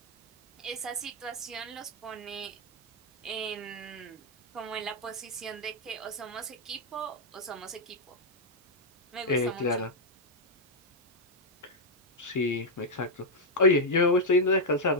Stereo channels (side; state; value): both; normal; correlation -0.01